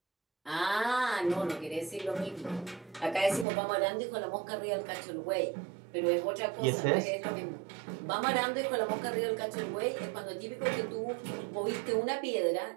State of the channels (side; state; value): left; drops out; at 3.5 s